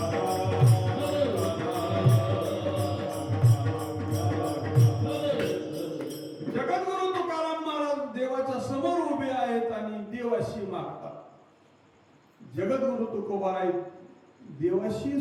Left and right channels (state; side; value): identical; both; correlation 1.00